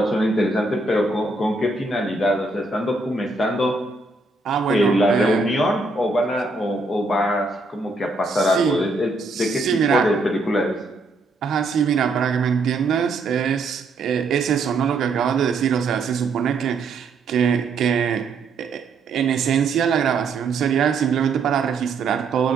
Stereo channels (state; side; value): quieter; left; 3.4 dB